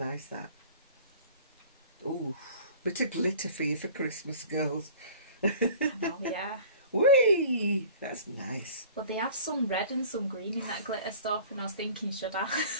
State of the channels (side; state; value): both; inverted; correlation -0.46